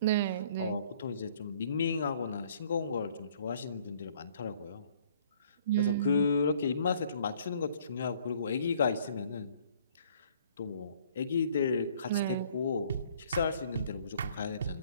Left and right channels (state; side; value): inverted; both; correlation -0.58